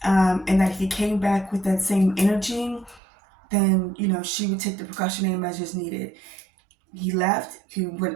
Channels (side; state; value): left; drops out; at 3.0 s